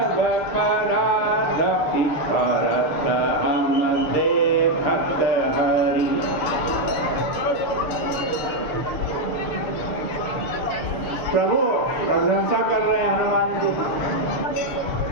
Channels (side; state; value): right; late; 6.6 ms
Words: परादपि भरत हम देखत हरि। प्रभु प्रशंसा कर रहे हैं हनुमान जी,